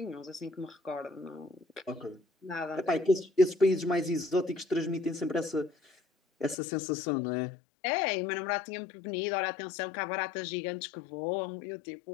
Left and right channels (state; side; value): drops out; right; at 6.6 s